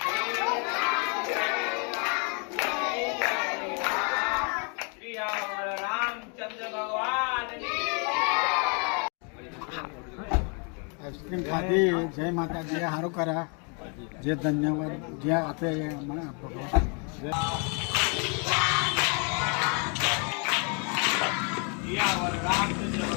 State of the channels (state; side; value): quieter; right; 36.3 dB